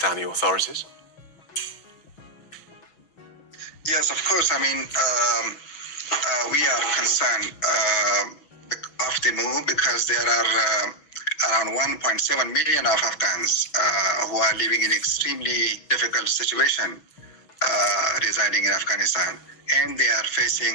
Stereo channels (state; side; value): late; right; 6.0 ms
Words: authorities? Yes, of course. I mean, we are concerned of the move because there are around 1.7 million of Afghans who are living in extremely difficult situation residing in Afghanistan, and they are